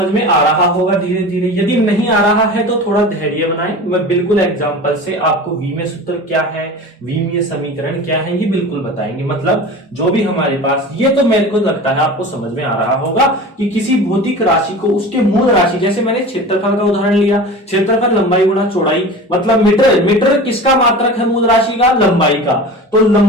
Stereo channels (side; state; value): both; normal; correlation 0.34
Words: में आ रहा होगा धीरे धीरे। यदि नहीं आ रहा है तो थोड़ा धैर्य बनाएं, मैं बिल्कुल एग्जांपल से आपको विमीय सूत्र क्या है, विमीय समीकरण क्या है, ये बिल्कुल बताएंगे। मतलब जो भी हमारे पास, ये तो मेरे को लगता है आपको समझ में आ रहा होगा कि किसी भौतिक राशि को उसके मूल राशि, जैसे मैंने क्षेत्रफल का उदाहरण लिया, क्षेत्रफल लंबाई गुणा चौड़ाई, मतलब मीटर किसका मात्रक है, मूल राशि का, लंबाई का। तो